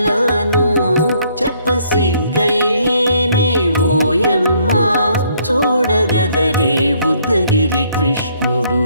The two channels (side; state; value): both; inverted; correlation -0.66